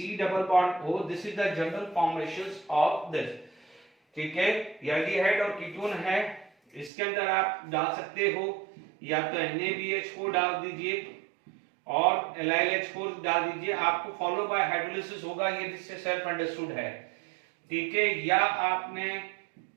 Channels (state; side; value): drops out; left; at 6.9 s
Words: double bond O, this is the general formations of this. ठीक है, एल्डिहाइड और कीटोन है, इसके अंदर आप डाल सकते हो या तो NaBH4 डाल दीजिए और LiLH4 डाल दीजिए, आपको फॉलो बाय हाइड्रोलिसिस होगा, ये जिससे सेल्फ अंडरस्टूड है। ठीक है, या आपने